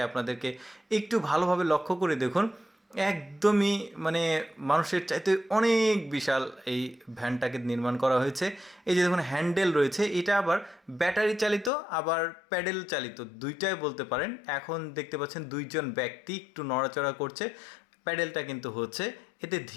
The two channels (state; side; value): drops out; right; at 11.7 s